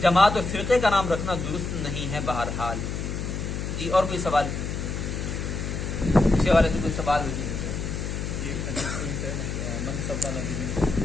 جماعت اور فرقے کا نام رکھنا درست نہیں ہے بہرحال. جی اور کوئی سوال اس حوالے سے؟ کوئی سوال ہو؟ یہ حدیث ہے منصب نبی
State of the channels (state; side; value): noise; left; hum, 4 dB below the sound